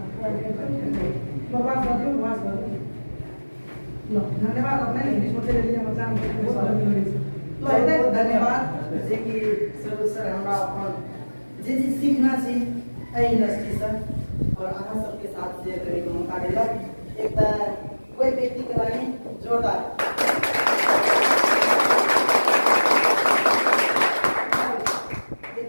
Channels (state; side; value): inverted; both; correlation -1.00